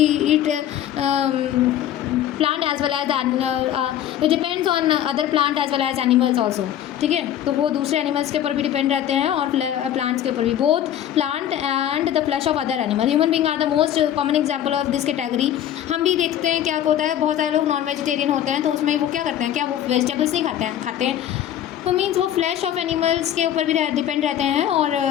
plant as well as depends on other plant as well as animals also, ठीक है। तो वो दूसरे एनिमल्स के ऊपर भी डिपेंड रहते हैं और प्लांट्स के ऊपर भी, both plant and the flesh of other animal. Human being are the most common example of this category. हम भी देखते हैं क्या होता है, बहुत सारे लोग नॉन वेजिटेरियन होते हैं, तो उसमें वो क्या करते हैं, क्या वो वेजिटेबल्स नहीं खाते हैं। तो मीन्स वो फ्लैश ऑफ एनिमल्स के ऊपर भी डिपेंड रहते हैं, और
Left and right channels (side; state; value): right; quieter; 11.0 dB